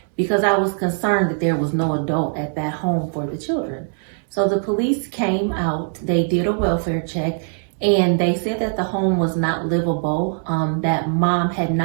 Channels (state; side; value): silent; left; 65 dB below the other